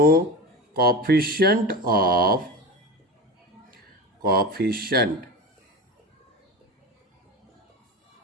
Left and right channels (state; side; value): normal; both; correlation 0.26